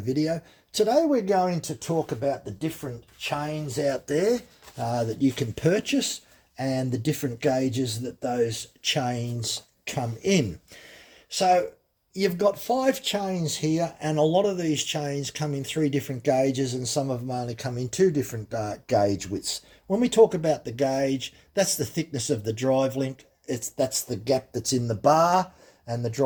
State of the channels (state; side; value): identical; both; correlation 1.00